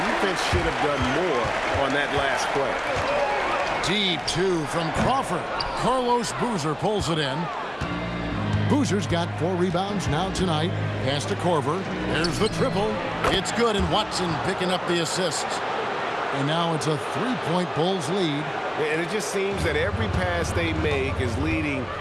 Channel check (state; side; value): identical; both; correlation 1.00